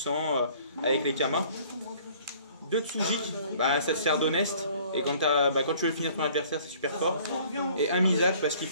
avec les Kama. 2 Tsujik, bah, ça te sert d'honnête. Et quand, quand tu veux finir ton adversaire, c'est super fort. Et un Mizak parce qu'il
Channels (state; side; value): inverted; both; correlation -0.54